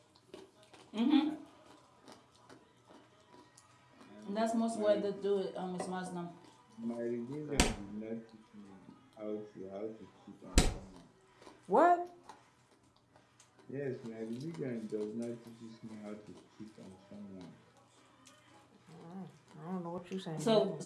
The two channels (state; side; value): identical; both; correlation 1.00